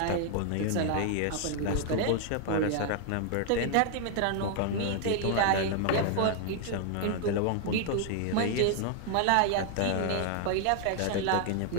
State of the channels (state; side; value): different; both; correlation 0.00